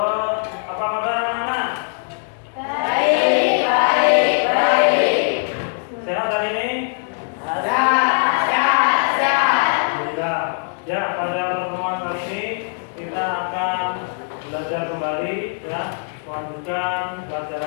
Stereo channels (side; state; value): right; silent; 65 dB below the other